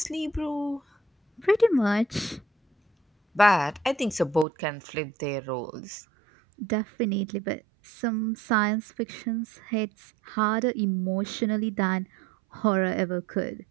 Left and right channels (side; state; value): left; drops out; at 4.5 s